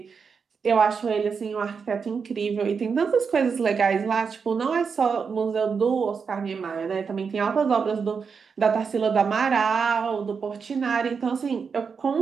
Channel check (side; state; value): left; quieter; 5.8 dB